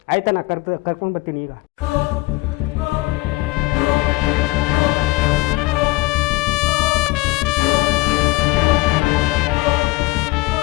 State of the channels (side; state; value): right; quieter; 21.7 dB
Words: ಆಯ್ತಾ, ನಾ ಕರ್ಕೊಂಡು ಬರ್ತೀನಿ ಈಗ.